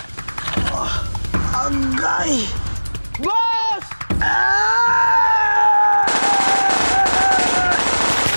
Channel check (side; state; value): both; inverted; correlation -1.00